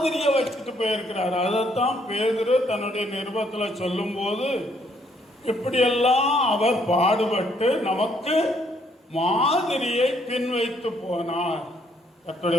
வச்சுட்டு போயிருக்கிறாரு. அதைத்தான் பேதுரு தன்னுடைய நிருபத்தில் சொல்லும் போது, இப்படியெல்லாம் அவர் பாடுபட்டு நமக்கு மாதிரியை பின் வைத்து போனார்.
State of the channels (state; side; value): normal; both; correlation 0.69